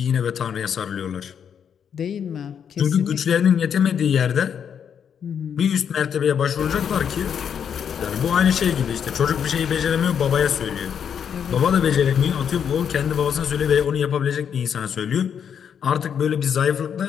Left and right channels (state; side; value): quieter; right; 7.9 dB